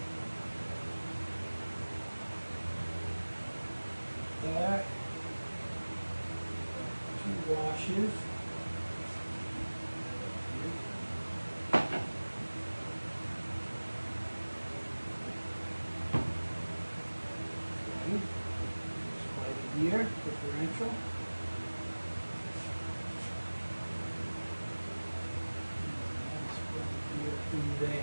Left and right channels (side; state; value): both; inverted; correlation -1.00